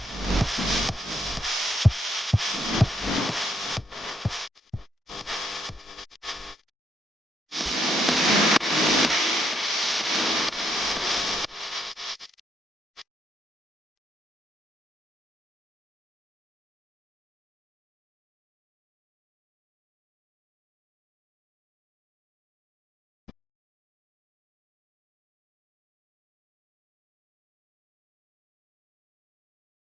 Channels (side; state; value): both; normal; correlation 0.75